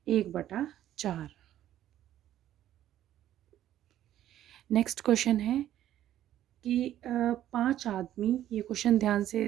1/4। नेक्स्ट क्वेश्चन है कि 5 आदमी, ये क्वेश्चन ध्यान से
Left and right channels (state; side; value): quieter; left; 12.2 dB